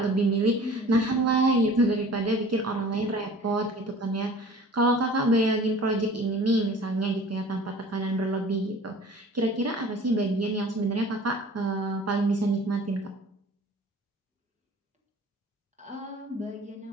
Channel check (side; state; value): both; normal; correlation 0.45